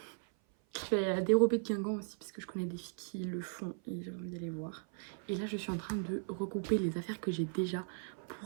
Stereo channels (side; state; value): left; silent; 53 dB below the other